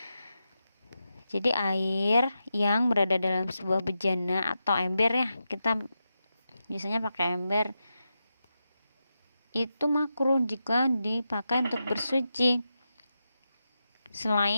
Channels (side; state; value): both; inverted; correlation -0.89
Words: Jadi air yang berada dalam sebuah bejana atau ember ya, kita biasanya pakai ember, itu makruh jika dipakai untuk bersuci.